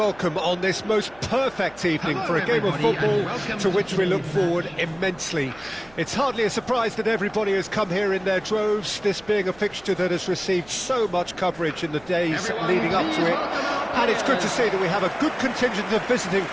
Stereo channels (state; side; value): noise; right; hum, 26 dB below the sound